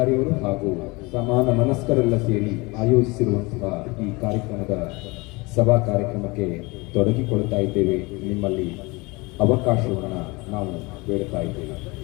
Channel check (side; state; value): right; quieter; 25.3 dB